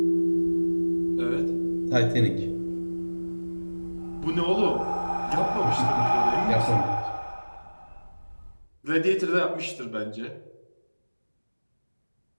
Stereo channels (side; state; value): both; inverted; correlation -1.00